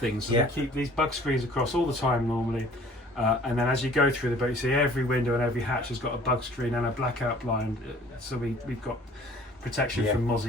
So we keep these bug screens across all the time normally. And then as you go through the boat, you see every window and every hatch has got a bug screen and a blackout blind. So we've got protection from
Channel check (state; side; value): normal; both; correlation 0.52